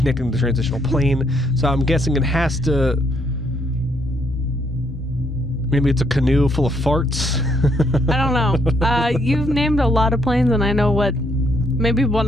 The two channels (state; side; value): normal; both; correlation 0.71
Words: the transitional plane. So I'm guessing it has to. Maybe it's a canoe full of farts. I don't know. You've named a lot of planes, and I know what maybe